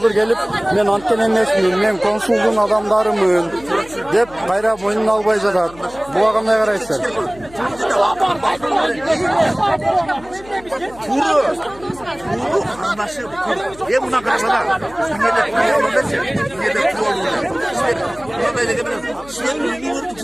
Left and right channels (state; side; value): noise; left; hum, 21 dB below the sound